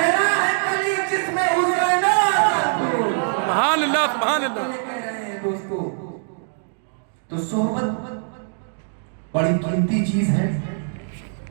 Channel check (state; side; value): silent; left; digital silence